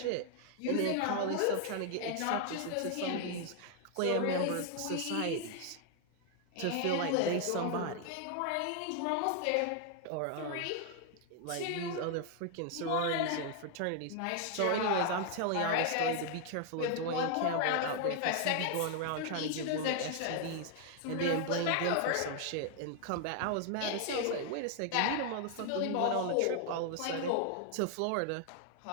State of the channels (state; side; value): different; both; correlation 0.00